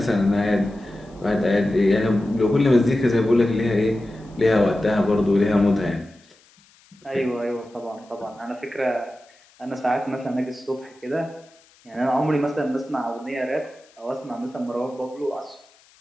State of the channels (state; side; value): noise; left; hiss, 30 dB below the sound